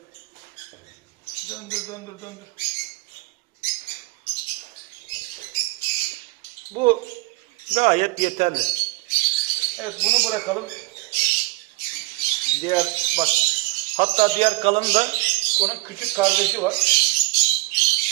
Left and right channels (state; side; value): quieter; left; 22.6 dB